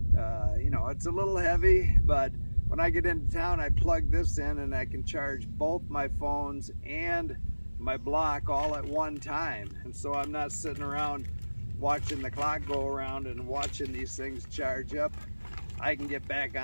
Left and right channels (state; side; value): inverted; both; correlation -1.00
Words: It's a little heavy, but when I get into town, I plug this in and I can charge both my phones and my block all at one time. And so I'm not sitting around watching the clock go around and watching these things charge up. I can get back